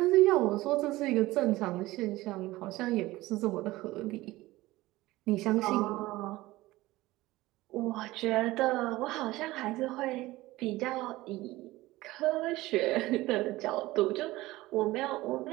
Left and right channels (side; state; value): left; quieter; 18.4 dB